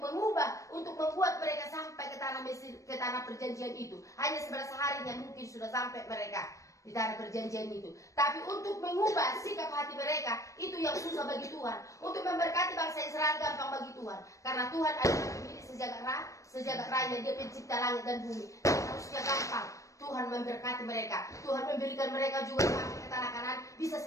untuk membuat mereka sampai ke tanah Mesir, ke tanah perjanjian itu. Hanya 11 harinya mungkin sudah sampai mereka di tanah perjanjian itu. Tapi untuk mengubah sikap hati mereka, itu yang susah bagi Tuhan. Untuk memberkati bangsa Israel gampang bagi Tuhan. Karena Tuhan adalah pemilik sejagat raya, Dia pencipta langit dan bumi. Harusnya gampang Tuhan memberkati mereka. Tuhan memberikan mereka juga sampai ke tanah Kanaan bisa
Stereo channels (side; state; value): right; late; 0.15 ms